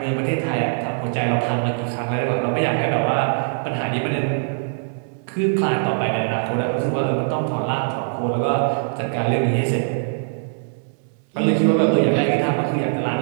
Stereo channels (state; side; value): silent; left; digital silence